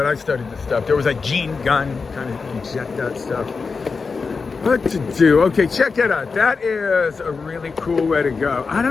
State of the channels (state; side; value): quieter; right; 4.7 dB